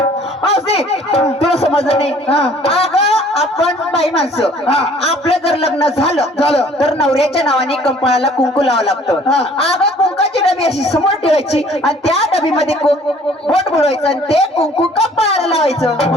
मावशी तुला समजलं नाही हा. अगं आपण बाई माणसं हा. आपलं जर लग्न झालं तर नवऱ्याच्या नावाने कंपळाला कुंकू लावावं लागतं हा. अगं कुंकाची डबी अशी समोर ठेवायची आणि त्या डबीमध्ये बोट बुडवायचं आणि ते कुंकू कंपळाला लावायचं.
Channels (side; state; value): both; normal; correlation 0.55